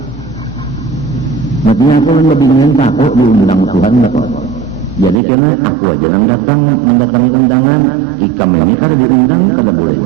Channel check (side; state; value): left; drops out; at 5.2 s